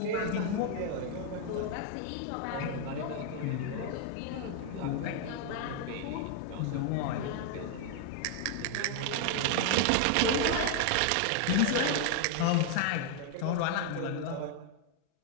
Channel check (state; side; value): different; both; correlation 0.00